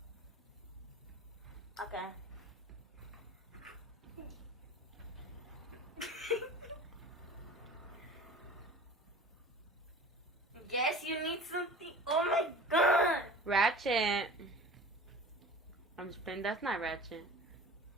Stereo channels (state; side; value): normal; both; correlation 0.40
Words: Okay. Yes, you need something. Oh my god! Ratchet. I'm just playing. That's not Ratchet.